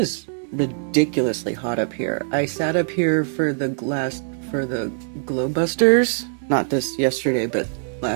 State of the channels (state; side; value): silent; left; 64 dB below the other